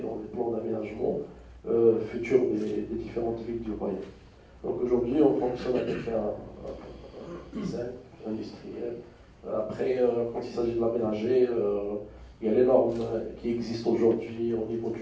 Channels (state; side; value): identical; both; correlation 1.00